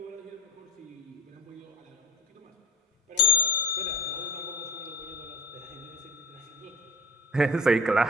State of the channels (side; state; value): both; normal; correlation 0.31